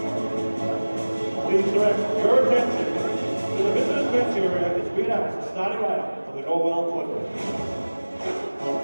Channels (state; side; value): inverted; both; correlation -1.00